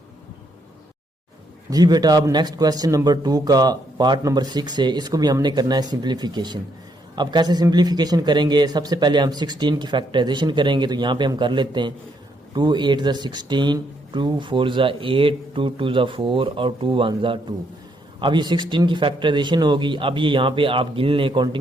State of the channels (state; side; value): normal; both; correlation 0.74